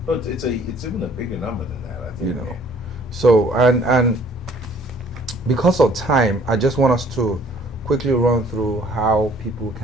But it's even a bigger number than that, I think. You know, so and because of time, I just want us to quickly run through how people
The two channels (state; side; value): normal; both; correlation 0.57